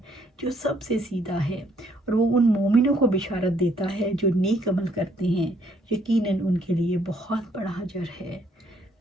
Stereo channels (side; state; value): both; normal; correlation 0.67